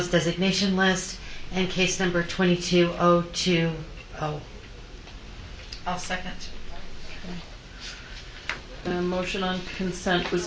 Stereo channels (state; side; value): identical; both; correlation 1.00